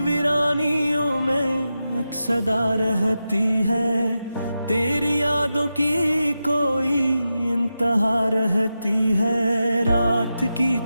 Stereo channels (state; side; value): inverted; both; correlation -0.90